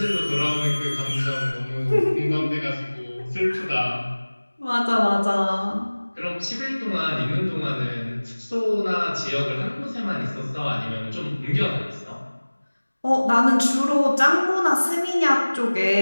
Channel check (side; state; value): both; inverted; correlation -1.00